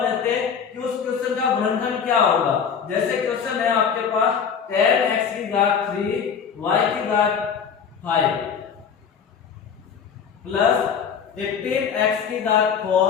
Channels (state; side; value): quieter; right; 7.0 dB